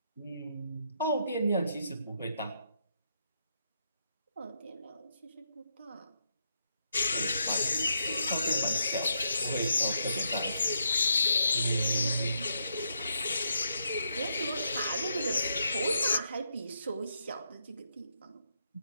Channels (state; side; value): inverted; both; correlation -0.79